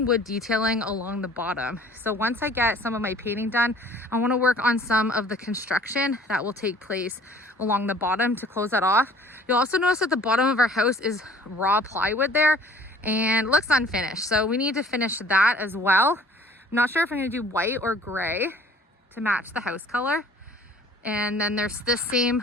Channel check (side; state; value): both; normal; correlation 0.52